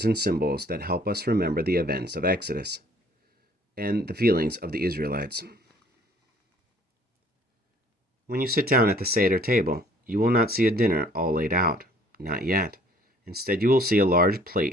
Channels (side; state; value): both; normal; correlation 0.57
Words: and symbols that help us remember the events of Exodus and the feelings of the Israelites. When you sit down at the Seder table, you will not see a dinner all laid out. Not yet. Instead, you will see a large